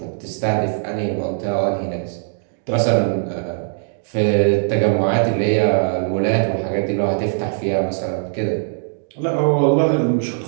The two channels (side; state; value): left; silent; digital silence